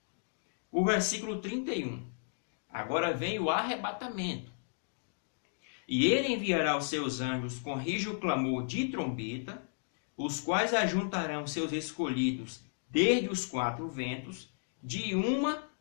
O versículo 31. Agora vem o arrebatamento. E ele enviará os seus anjos com rijo clamor de trombeta, os quais ajuntarão seus escolhidos desde os quatro ventos, de uma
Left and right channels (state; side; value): silent; right; digital silence